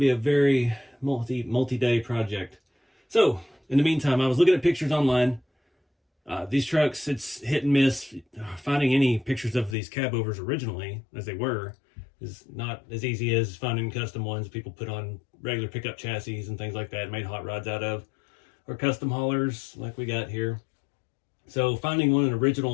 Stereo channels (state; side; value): drops out; right; at 9.8 s